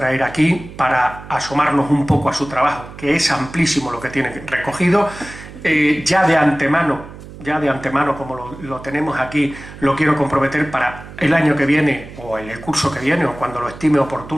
aquí, para asomarnos un poco a su trabajo, que es amplísimo lo que tiene recogido. Ya de antemano, como lo tenemos aquí, lo quiero comprometer para el año que viene, o en el curso que viene, o cuando lo estime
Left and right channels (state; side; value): noise; right; hum, 15 dB below the sound